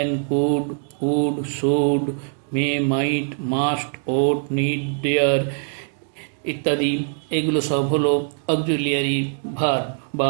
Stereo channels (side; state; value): left; silent; digital silence